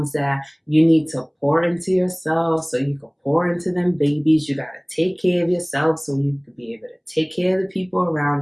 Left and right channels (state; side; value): identical; both; correlation 1.00